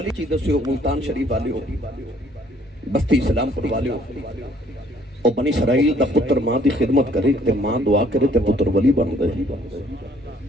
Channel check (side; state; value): both; normal; correlation 0.61